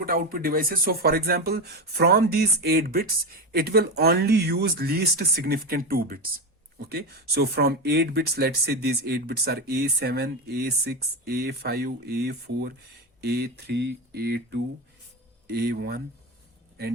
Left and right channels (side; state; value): both; normal; correlation 0.17